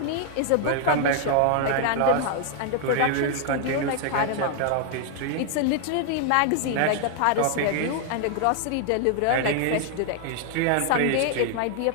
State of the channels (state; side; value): different; both; correlation 0.00